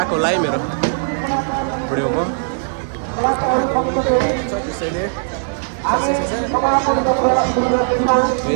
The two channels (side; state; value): left; silent; digital silence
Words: होला है मेरो भिडियोमा त्यसैले